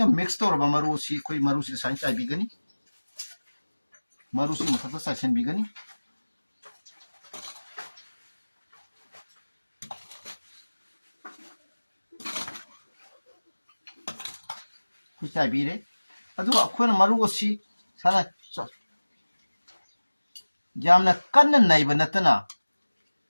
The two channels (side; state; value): both; inverted; correlation -1.00